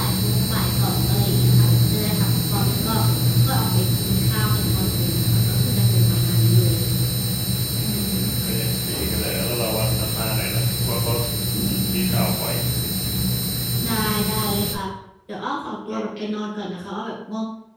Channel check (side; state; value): both; identical; correlation 1.00